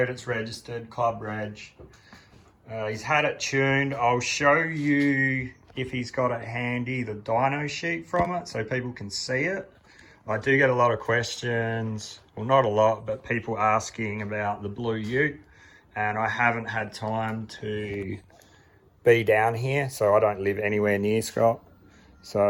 it's registered, club reg. He's had it tuned. I'll show you, if he's got it handy, the dyno sheet from it so people can see it. I do get a lot of questions, well not a lot, but people asking about the blue ute, and I haven't had time to be down here, so I don't live anywhere near Scott.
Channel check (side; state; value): both; identical; correlation 1.00